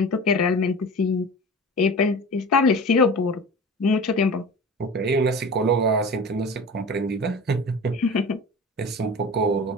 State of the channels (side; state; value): both; normal; correlation 0.35